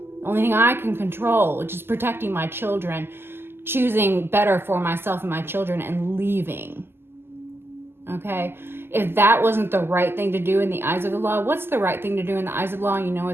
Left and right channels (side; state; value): left; late; 0.11 ms